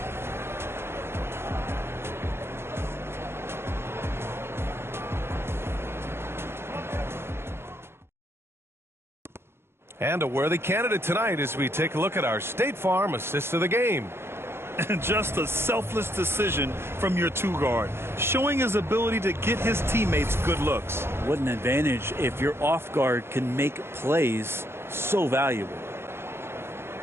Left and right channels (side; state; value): left; late; 0.12 ms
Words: And a worthy candidate tonight as we take a look at our State Farm assist of the game. And just a selfless decision from your 2-guard, showing his ability to get his teammates good looks. What an advantage if your off guard can make plays so valuable.